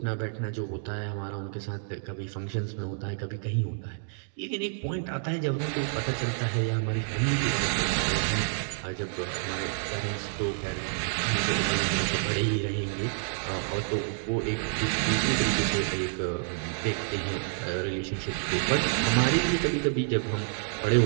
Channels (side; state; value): left; silent; digital silence